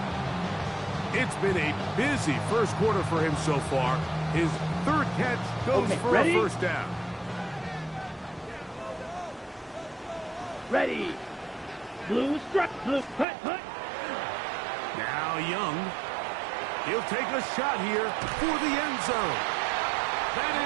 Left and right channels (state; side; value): drops out; left; at 13.2 s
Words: It's been a busy first quarter for him so far. His third catch goes for a first down. Ready. Blue strike. Blue hut. Now Young. He'll take a shot here for the end zone. That